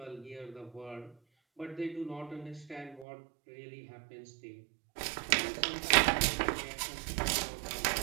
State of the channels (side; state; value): left; drops out; at 3.1 s